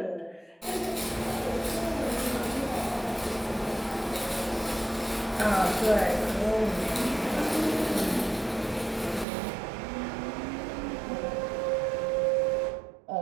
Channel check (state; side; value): drops out; left; at 9.2 s